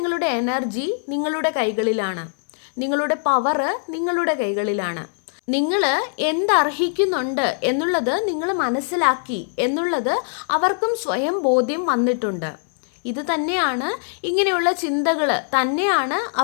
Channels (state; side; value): silent; right; 63 dB below the other